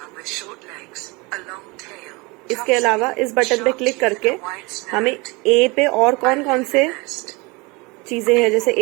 इसके अलावा इस बटन पे क्लिक करके हमें ए पे और कौन कौन से चीजें हैं, जैसे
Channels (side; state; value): left; quieter; 26.1 dB